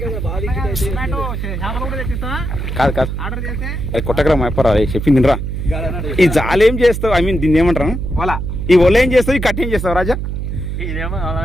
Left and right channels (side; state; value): right; noise; hum, 4 dB below the sound